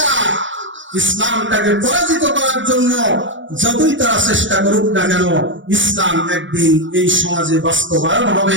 ইসলামটাকে পরাজিত করার জন্য যতই তারা চেষ্টা করুক না কেন, ইসলাম একদিন এই সমাজে বাস্তবায়ন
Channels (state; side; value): late; left; 0.56 ms